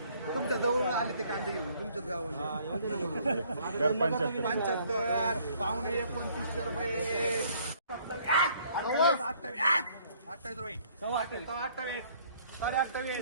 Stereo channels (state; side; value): inverted; both; correlation -0.61